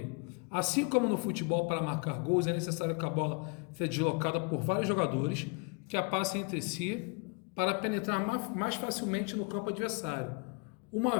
Assim como no futebol, para marcar gols, é necessário que a bola seja deslocada por vários jogadores que a passem entre si para penetrar mais facilmente no campo adversário, uma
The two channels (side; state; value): right; quieter; 33.1 dB